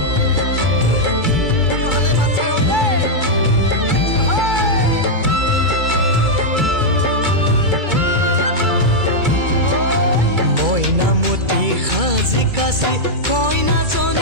মইনামতি সাজি কাচি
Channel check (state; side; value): late; left; 2.3 ms